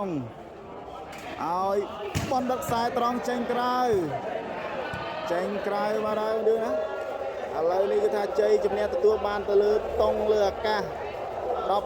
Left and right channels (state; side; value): identical; both; correlation 1.00